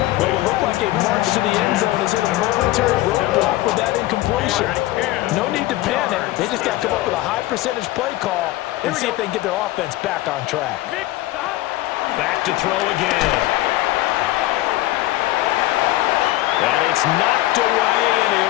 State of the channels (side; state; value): right; quieter; 17.0 dB